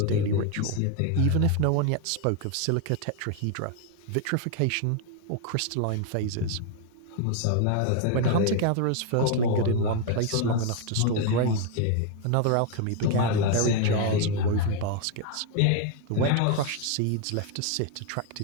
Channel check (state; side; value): different; both; correlation 0.01